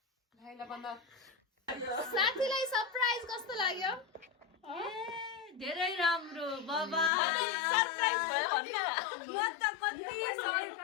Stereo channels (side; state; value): right; drops out; at 7.1 s